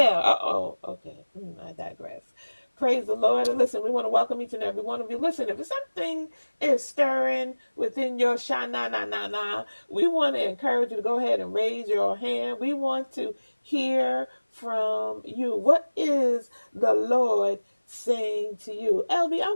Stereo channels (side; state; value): both; inverted; correlation -1.00